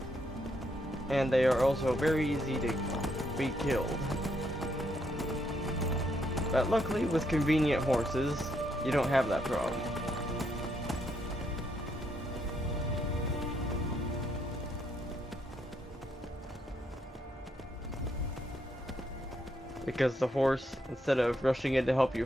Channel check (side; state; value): both; normal; correlation 0.76